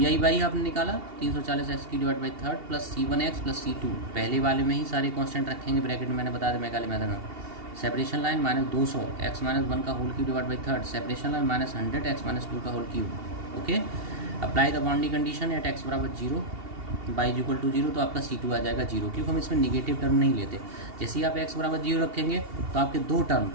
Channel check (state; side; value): late; left; 2.7 ms